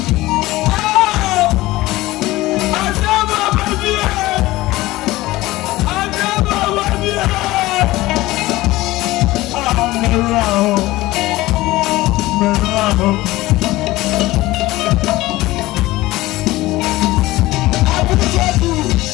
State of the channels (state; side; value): quieter; right; 18.3 dB